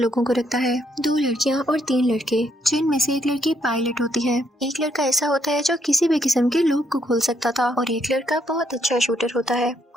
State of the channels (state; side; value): normal; both; correlation 0.74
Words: लोगों को रखता है, 2 लड़कियां और 3 लड़के, जिनमें से एक लड़की पायलट होती है। एक लड़का ऐसा होता है जो किसी भी किस्म के लूप को खोल सकता था और एक लड़का बहुत अच्छा शूटर होता है।